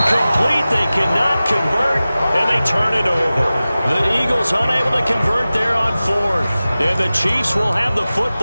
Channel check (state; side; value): inverted; both; correlation -0.96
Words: They cannot convert, and they turn it over. The Eagles unable to convert there on 4th. And the Chiefs will have the